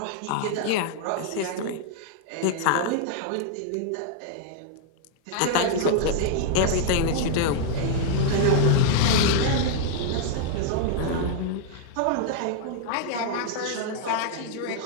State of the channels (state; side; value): different; both; correlation -0.01